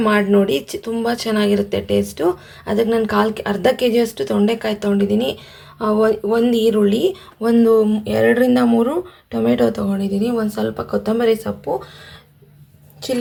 ಮಾಡಿ ನೋಡಿ, ತುಂಬ ಚೆನ್ನಾಗಿರುತ್ತೆ ಟೇಸ್ಟು. ಅದಕ್ಕೆ ನಾನು ಅರ್ಧ ಕೆ ಜಿಯಷ್ಟು ತೊಂಡೆಕಾಯಿ ತೊಗೊಂಡಿದ್ದೀನಿ. ಒಂದು ಈರುಳ್ಳಿ, ಒಂದು 2ರಿಂದ 3 ಟೊಮೆಟೊ ತೊಗೊಂಡಿದ್ದೀನಿ, ಒಂದು ಸ್ವಲ್ಪ ಕೊತ್ತಂಬರಿ ಸೊಪ್ಪು,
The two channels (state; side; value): identical; both; correlation 1.00